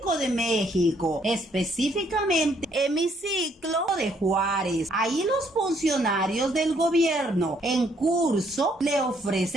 de México, específicamente Hemiciclo de Juárez. Ahí los funcionarios del gobierno en curso le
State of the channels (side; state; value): both; normal; correlation 0.68